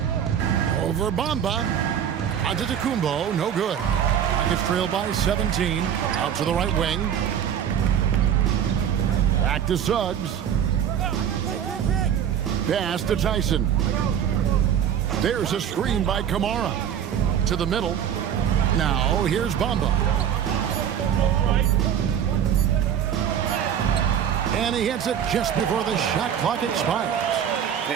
Over Bamba. Antetokounmpo, no good. Rockets trail by 17. Out to the right wing. Back to Suggs. Pass to Tyson. There's a screen by Kamara. To the middle. Now here's Bamba. And he hits it just before the shot clock expires.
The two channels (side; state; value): left; quieter; 9.0 dB